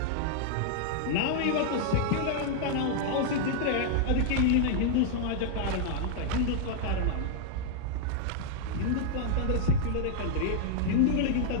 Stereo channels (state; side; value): different; both; correlation -0.01